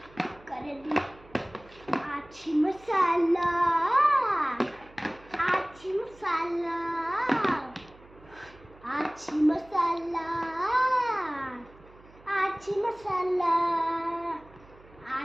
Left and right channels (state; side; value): noise; right; hum, 24 dB below the sound